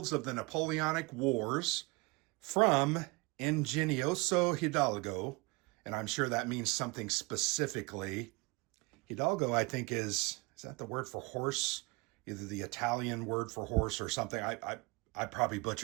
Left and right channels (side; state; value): left; quieter; 26.5 dB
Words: of the Napoleonic Wars from Ingenioso Hidalgo, and I'm sure that means something specifically. Hidalgo, I think, is that the word for horse? Either the Italian word for horse or something. I probably